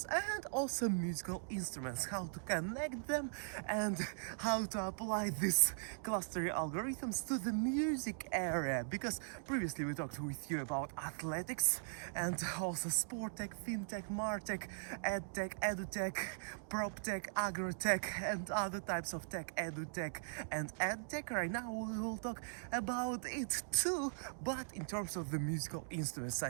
and also musical instruments, how to connect them and how to apply these clustering algorithms to the music area. Because previously we talked with you about athletics and also sport tech, fintech, martech, edtech, edutech, proptech, agrotech, and other types of tech, edutech and edtech. Right now we will talk about it too, but in terms of the musical instruments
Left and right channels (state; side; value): silent; left; digital silence